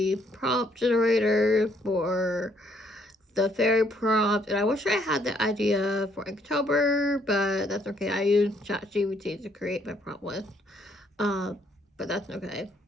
prompt generator for the fairy prompt, and I wish I had the idea for October, but that's okay. I used ChatGPT to create my prompt list, but that's okay.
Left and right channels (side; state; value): both; normal; correlation 0.68